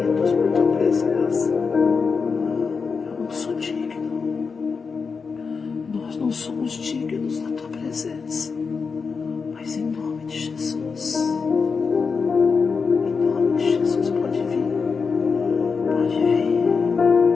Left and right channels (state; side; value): quieter; right; 5.2 dB